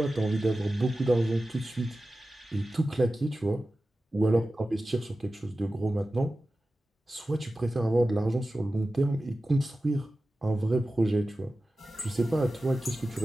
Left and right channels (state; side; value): normal; both; correlation 0.95